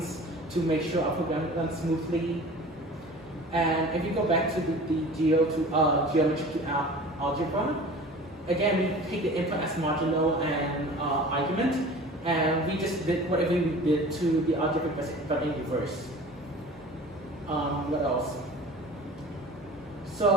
to make sure our program runs smoothly. And if you go back to the geometry to algebra, again we take the input as modulo and argument. And we just did whatever we did to the algebraic but in reverse. What else? So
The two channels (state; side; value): normal; both; correlation 0.41